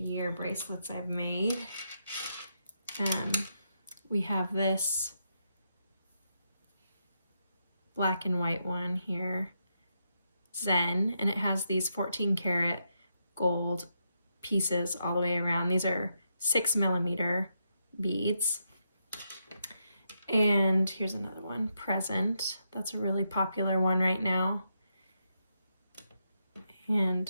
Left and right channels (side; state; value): both; inverted; correlation -0.82